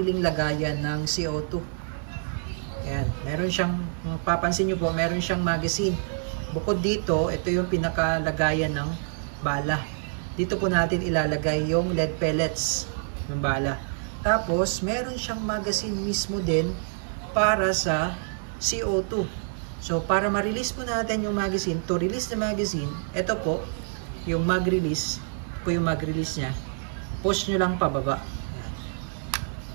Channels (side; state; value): left; silent; 60 dB below the other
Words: lagayan ng CO2. Ayan, meron siyang, papansin nyo po, meron siyang magazine. Bukod dito, ito yung pinaka lagayan ng bala. Dito po natin ilalagay yung lead pellets ng bala. Tapos, meron siyang magazine mismo din para sa CO2. So, para ma-release po natin yung magazine, to release the magazine, ito po, yung mag-release, po yung mag-release niya, push nyo lang pababa.